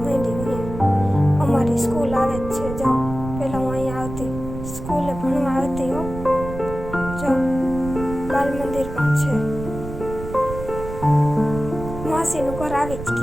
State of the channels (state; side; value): noise; right; rumble, 9 dB below the sound